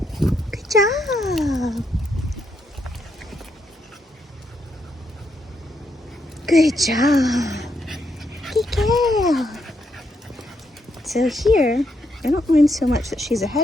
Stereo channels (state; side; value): normal; both; correlation 0.79